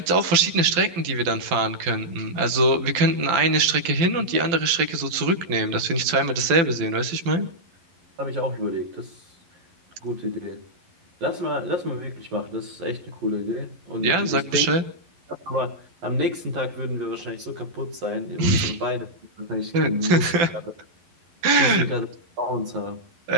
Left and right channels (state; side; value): late; left; 12 ms